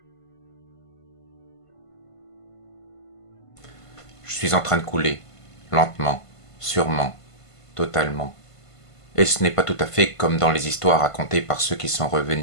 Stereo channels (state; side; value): late; right; 1.5 ms